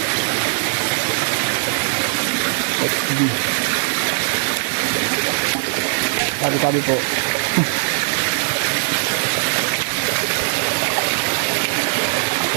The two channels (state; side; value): silent; left; digital silence